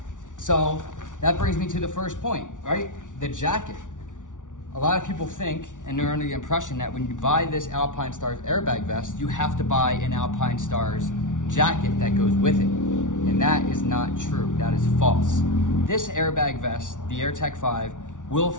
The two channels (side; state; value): right; late; 0.87 ms